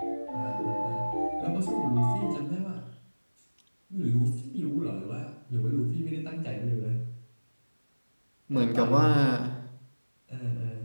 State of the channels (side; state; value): both; inverted; correlation -1.00